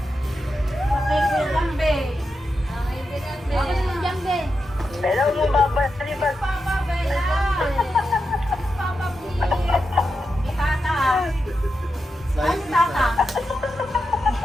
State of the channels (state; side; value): normal; both; correlation 0.88